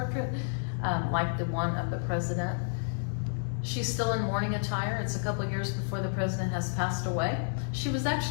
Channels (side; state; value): right; silent; digital silence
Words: like the one of the president. She's still in mourning attire. It's a couple years before the president has passed away. She was